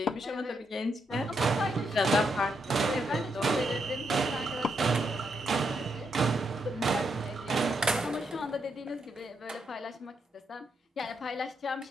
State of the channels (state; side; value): normal; both; correlation 0.80